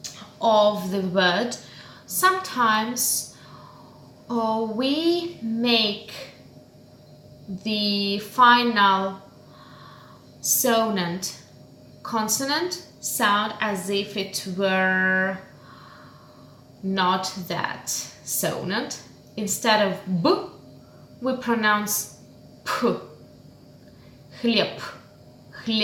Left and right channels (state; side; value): identical; both; correlation 1.00